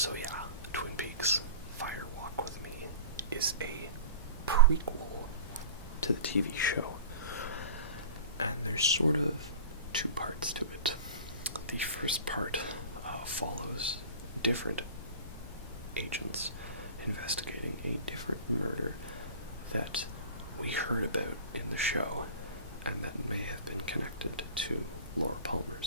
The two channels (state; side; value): inverted; both; correlation -0.37